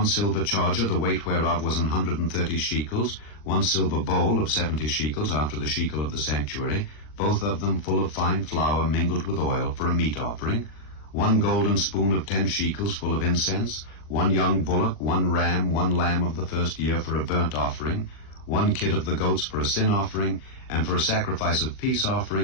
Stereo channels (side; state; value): right; late; 40 ms